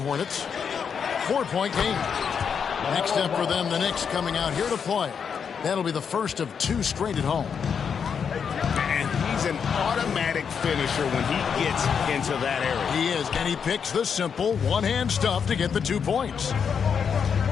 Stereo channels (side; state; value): right; quieter; 6.8 dB